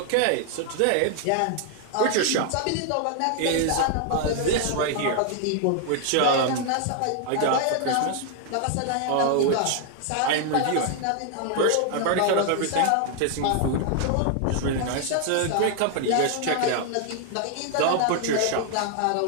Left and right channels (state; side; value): different; both; correlation 0.00